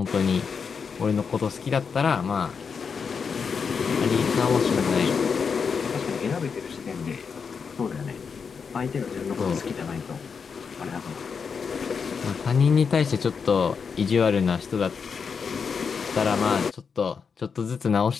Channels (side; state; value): right; quieter; 5.9 dB